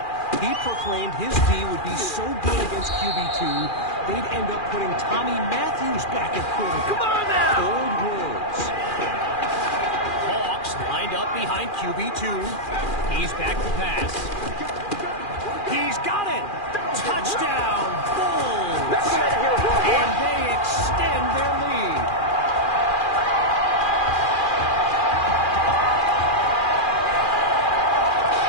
He proclaimed his D would be so good against QB2, they'd end up putting Tommy Matthews back at quarterback. Come on now! Bold words. Hawks lined up behind QB2. He's back to pass. He's got it! Touchdown, Bulls! And they extend their lead.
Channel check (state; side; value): late; right; 2.4 ms